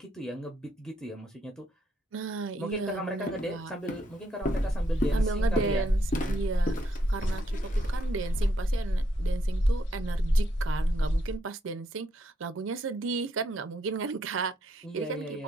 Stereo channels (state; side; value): normal; both; correlation 0.75